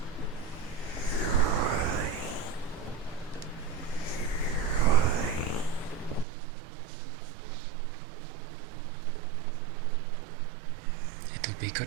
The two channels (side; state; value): left; drops out; at 6.2 s